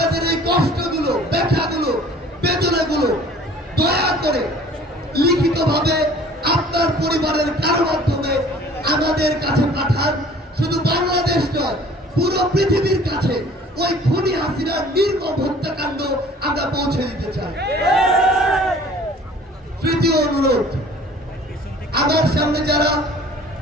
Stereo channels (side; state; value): both; normal; correlation 0.50